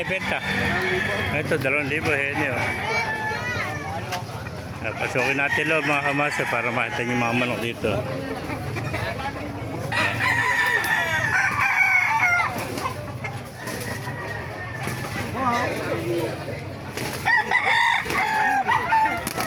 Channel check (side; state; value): both; identical; correlation 1.00